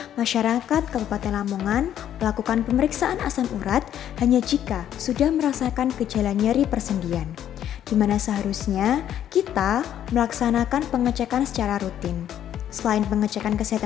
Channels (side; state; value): right; quieter; 10.6 dB